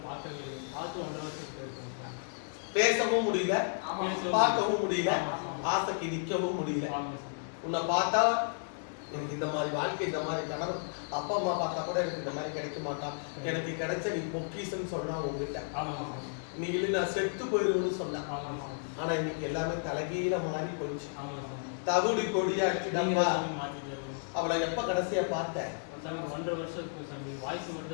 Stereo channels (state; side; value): silent; right; digital silence